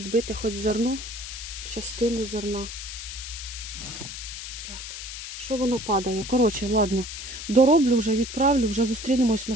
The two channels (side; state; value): left; noise; hiss, 9 dB below the sound